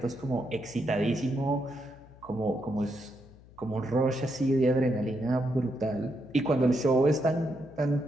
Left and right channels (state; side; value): noise; left; hum, 23 dB below the sound